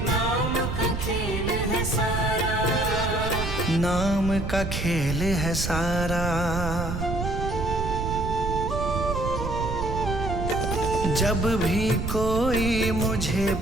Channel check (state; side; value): noise; right; rumble, 3 dB below the sound